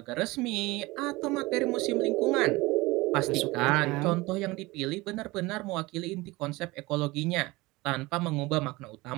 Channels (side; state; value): left; quieter; 21.6 dB